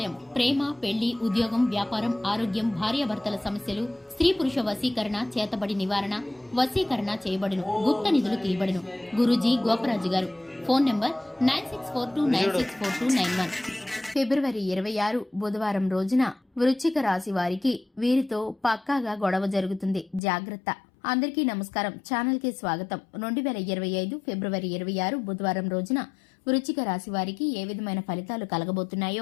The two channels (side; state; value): right; drops out; at 20.2 s